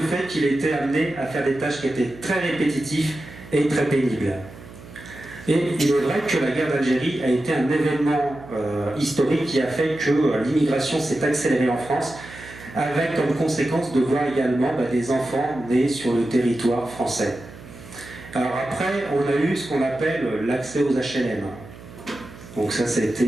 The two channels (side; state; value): right; noise; hum, 17 dB below the sound